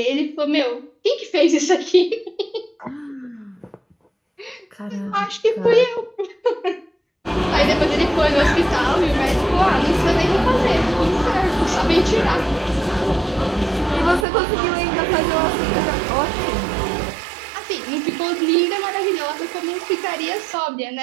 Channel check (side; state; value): left; drops out; at 14.2 s